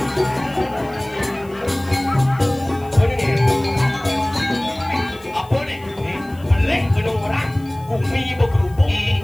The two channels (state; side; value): noise; left; hiss, 26 dB below the sound